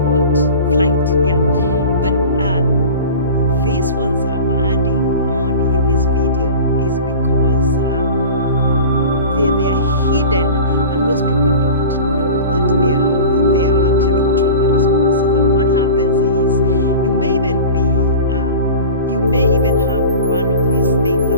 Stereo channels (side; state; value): both; inverted; correlation -0.37